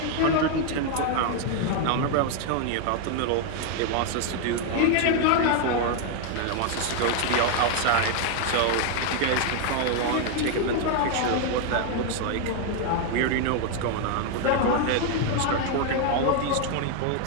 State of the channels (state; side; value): different; both; correlation 0.00